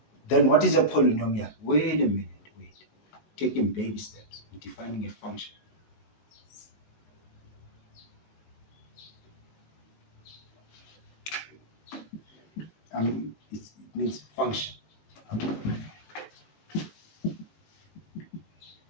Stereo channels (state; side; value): late; right; 18 ms